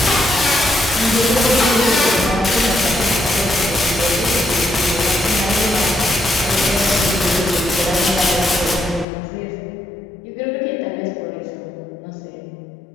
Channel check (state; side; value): drops out; right; at 9.1 s